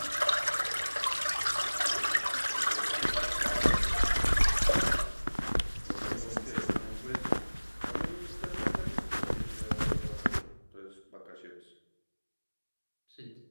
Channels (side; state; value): both; inverted; correlation -1.00